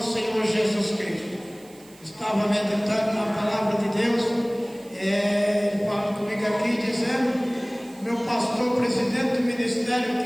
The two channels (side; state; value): right; noise; hiss, 25 dB below the sound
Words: Senhor Jesus Cristo. Estava meditando na palavra de Deus, ele fala comigo aqui dizendo, meu pastor, presidente do ministério